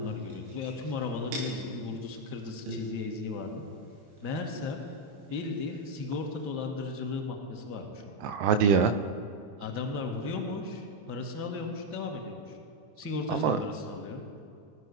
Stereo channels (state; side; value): late; left; 29 ms